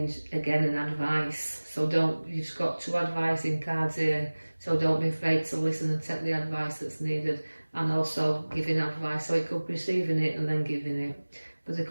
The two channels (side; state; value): both; inverted; correlation -1.00